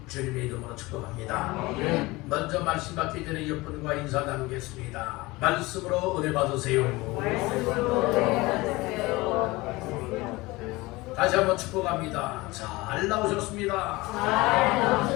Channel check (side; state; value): right; quieter; 21.6 dB